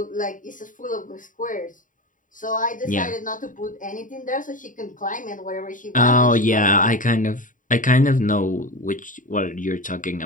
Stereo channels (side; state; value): right; late; 0.38 ms